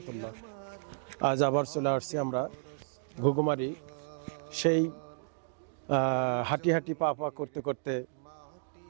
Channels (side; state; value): left; silent; digital silence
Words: আজ আবার চলে আসছি আমরা ঘুঘুমারি। সেই হাঁটি হাঁটি পা পা করতে করতে